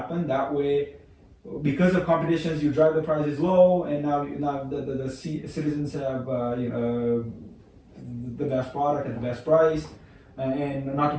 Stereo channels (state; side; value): identical; both; correlation 1.00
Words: That way, because of competitions, you drive the prices low, and now the citizens have the best product at the best price, and not to